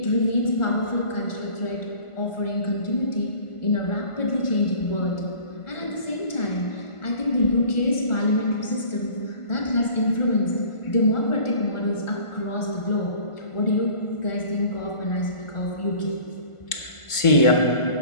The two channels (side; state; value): right; late; 1.4 ms